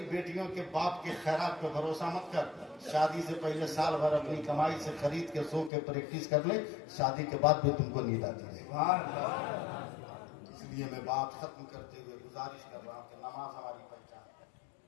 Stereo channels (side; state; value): right; drops out; at 5.7 s